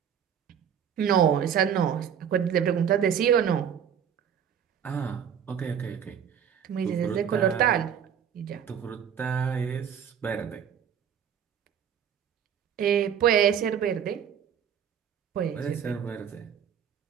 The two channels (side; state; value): left; quieter; 8.4 dB